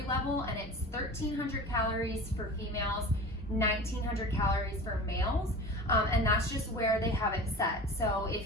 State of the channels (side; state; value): both; normal; correlation 0.35